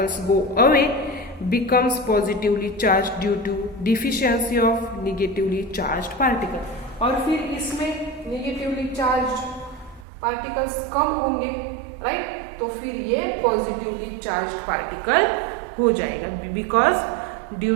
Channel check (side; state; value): left; drops out; at 10.1 s